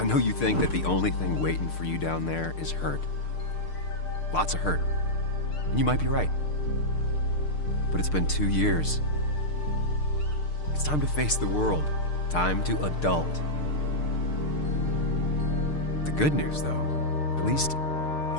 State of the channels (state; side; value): late; right; 6.6 ms